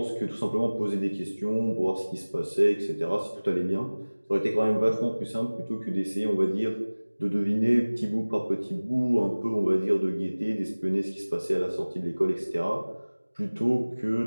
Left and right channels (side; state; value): both; inverted; correlation -1.00